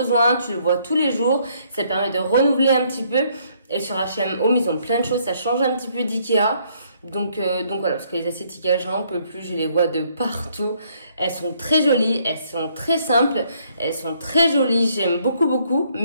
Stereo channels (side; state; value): both; inverted; correlation -0.67